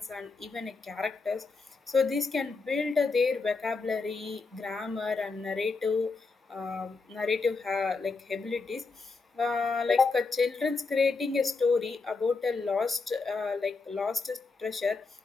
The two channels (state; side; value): quieter; right; 4.2 dB